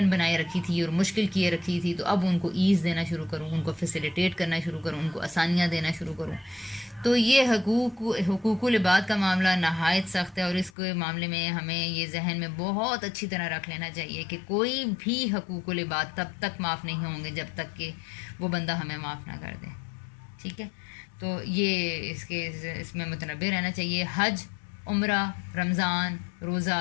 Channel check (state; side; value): drops out; right; at 10.7 s